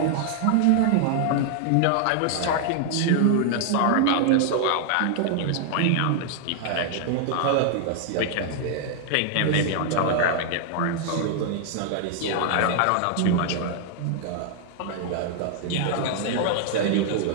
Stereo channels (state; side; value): different; both; correlation 0.00